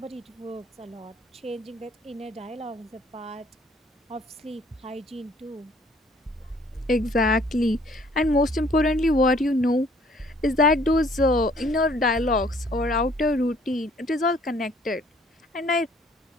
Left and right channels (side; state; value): both; normal; correlation 0.60